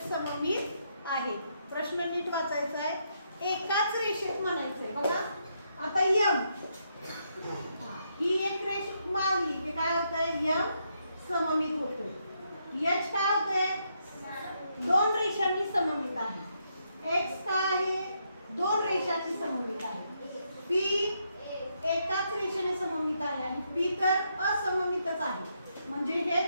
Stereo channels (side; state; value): both; inverted; correlation -0.78